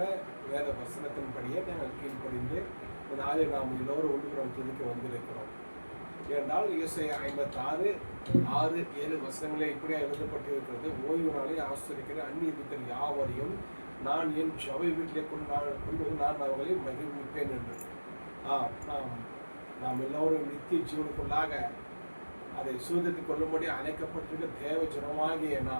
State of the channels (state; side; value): inverted; both; correlation -1.00